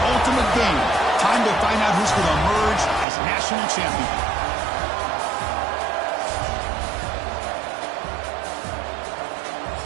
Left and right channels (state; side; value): drops out; left; at 3.1 s